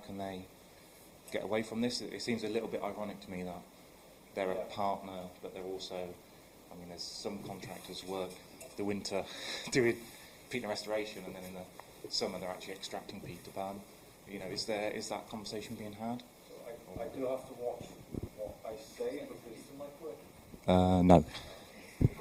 they get away from this? It seems a little bit ironic to me that they're a partner, but they're also, I mean, there's some contractors work the winter doing peat restoration, and then in the summer they're actually extracting peat to burn. Is that conversation being had? I do have to watch what I say because no.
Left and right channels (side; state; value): both; identical; correlation 1.00